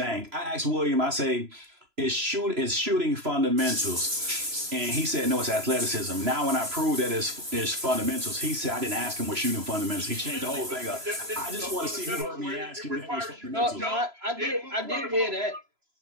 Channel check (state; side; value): late; left; 3.0 ms